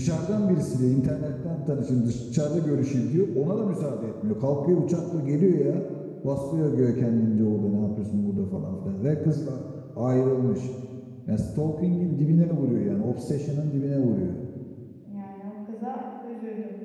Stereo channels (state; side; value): identical; both; correlation 1.00